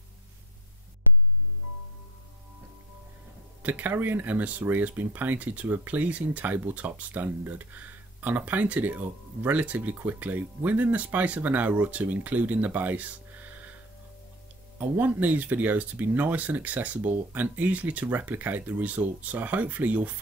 The Carrion Emissary has been painted to a pleasing tabletop standard, and I painted it up relatively quickly, within the space of an hour or two, including the base. I want these videos to be nice and accessible and easily to replicate the results, so hopefully you'll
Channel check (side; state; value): both; normal; correlation 0.28